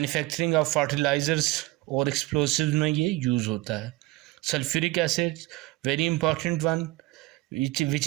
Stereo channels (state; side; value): quieter; left; 19.6 dB